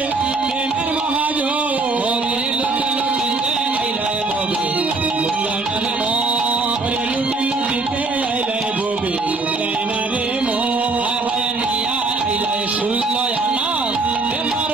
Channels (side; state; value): left; quieter; 3.6 dB